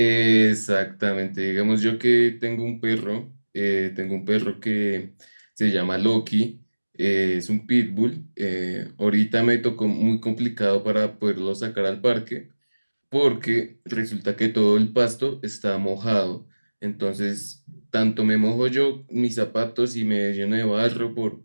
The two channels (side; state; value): both; inverted; correlation -1.00